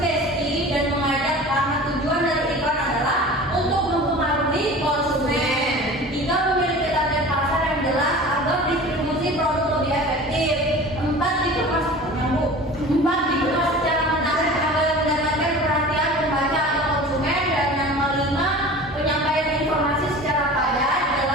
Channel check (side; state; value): both; normal; correlation 0.39